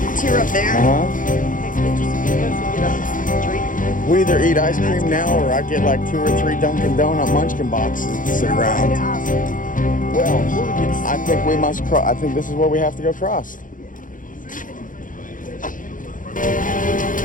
tier up there. Uh-huh. Take pictures and videos and get a drink. We either eat ice cream now or I get like 2 or 3 Dunkin' Donut munchkin boxes to sit around. Well, I think we must cross. I think this is where we have to go cross.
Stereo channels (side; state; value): right; late; 0.39 ms